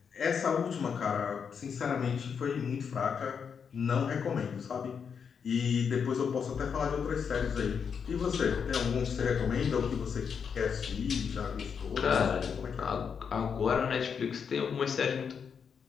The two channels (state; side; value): quieter; right; 6.7 dB